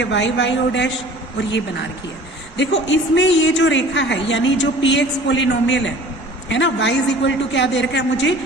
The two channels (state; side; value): normal; both; correlation 0.46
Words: वाई वाई ओ डैश, और ये बना रखी है। देखो इसमें ये जो रेखा है, यानी जो पी एक्स पोलिनोमियल है ना, y इज इक्वल टू क्या दे रखा है मुझे,